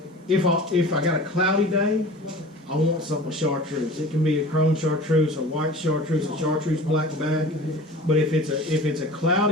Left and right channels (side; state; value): both; normal; correlation 0.40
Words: if I got a cloudy day, I want something with chartreuse. It can be a chrome chartreuse, a white chartreuse, a chartreuse black back. But if it's a